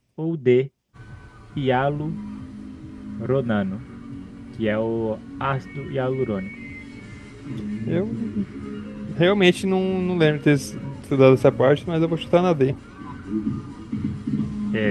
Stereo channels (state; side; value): identical; both; correlation 1.00